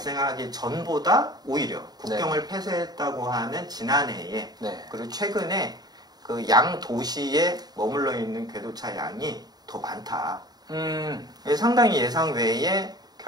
전보다 오히려 국경을 폐쇄했다고 하는 지난해에 그리고 최근에 그 양 도시에 머물러 있는 궤도차 양이 더 많다. 상당히 예상 외의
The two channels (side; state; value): left; late; 0.19 ms